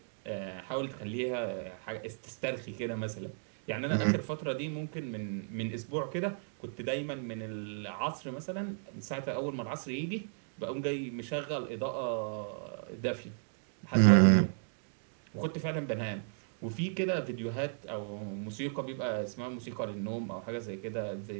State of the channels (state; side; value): silent; left; digital silence